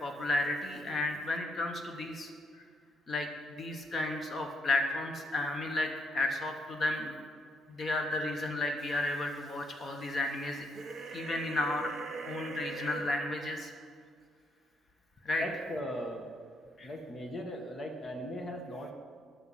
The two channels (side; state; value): both; normal; correlation 0.74